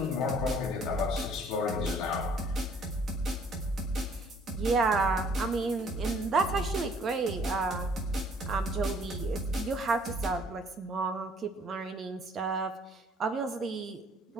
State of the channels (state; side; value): normal; both; correlation 0.59